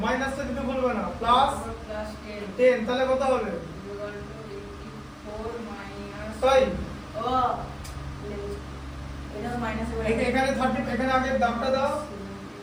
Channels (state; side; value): identical; both; correlation 1.00